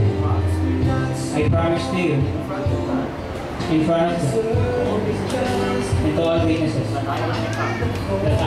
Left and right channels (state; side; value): identical; both; correlation 1.00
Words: I promise to you, in front of God, and to all witnesses, that